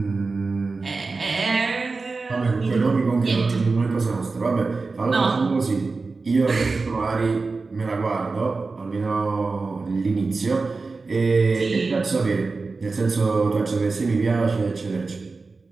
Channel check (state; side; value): quieter; left; 4.0 dB